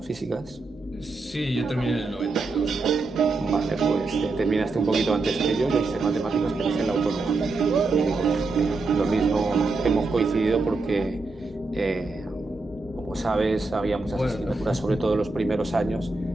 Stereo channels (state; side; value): quieter; left; 3.6 dB